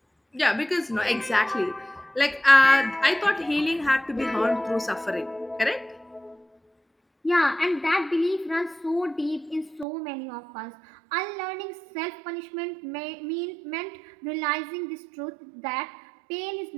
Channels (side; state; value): left; drops out; at 9.9 s